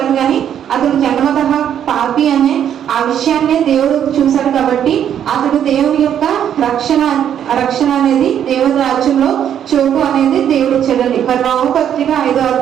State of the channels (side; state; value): left; quieter; 9.5 dB